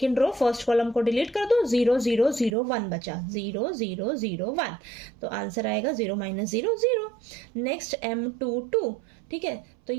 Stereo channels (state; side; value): drops out; left; at 2.5 s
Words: रो फर्स्ट कॉलम को डिलीट कर दो। 0 0 0 1 बचा, 0 0 0 1, तो आंसर आएगा 0 -0 0। नेक्स्ट M22, ठीक है। तो